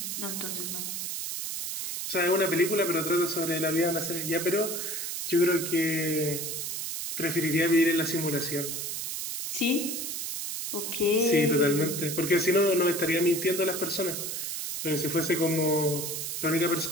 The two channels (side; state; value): right; noise; hiss, 4 dB below the sound